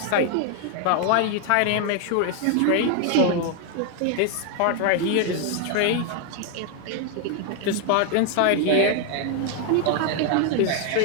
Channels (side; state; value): both; different; correlation 0.01